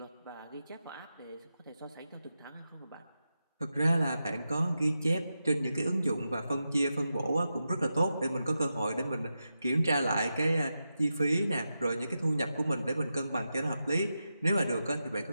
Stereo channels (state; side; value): inverted; both; correlation -0.89